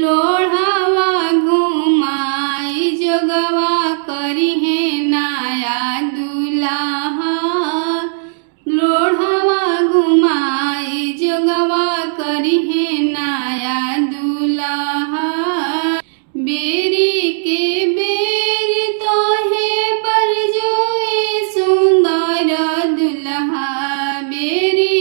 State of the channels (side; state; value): left; silent; digital silence